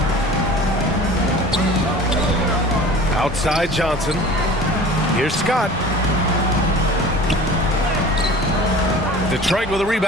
Outside Johnson. Here's Scott. Detroit with a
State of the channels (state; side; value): normal; both; correlation 0.41